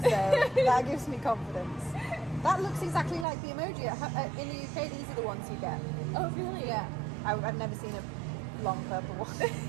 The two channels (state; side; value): drops out; left; at 3.2 s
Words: So that gives me confidence. That looks exactly like the emoji. In the UK, these are the ones you get. Oh, really? Yeah. I've never seen a long purple